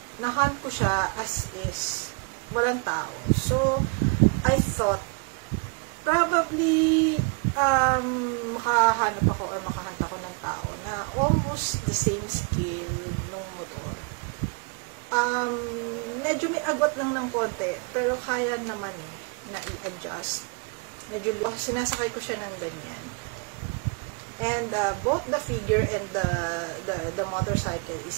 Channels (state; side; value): quieter; left; 35.1 dB